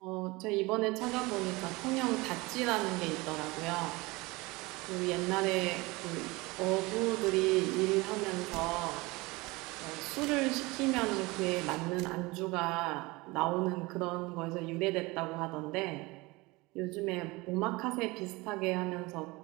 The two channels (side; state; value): left; quieter; 23.1 dB